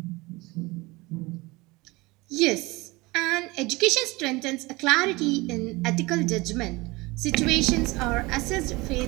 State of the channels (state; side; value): quieter; left; 22.8 dB